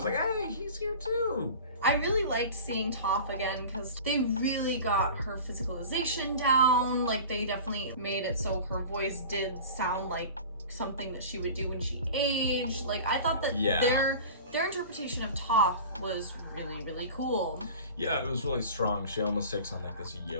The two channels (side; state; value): both; inverted; correlation -0.37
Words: like, hey, he's here too. I really liked seeing Toph again because they really got her physicalization down. Like, they definitely made it so her voice did sound like something that she would do when she aged. Like, I thought that their interpretation of Toph was really, really cool. Yeah, it was really strong. She almost takes on like this